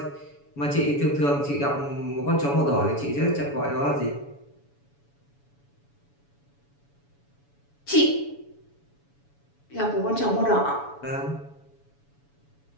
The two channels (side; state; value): right; late; 7.1 ms